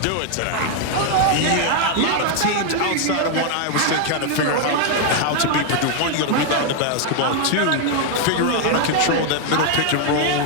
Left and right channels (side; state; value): both; different; correlation 0.00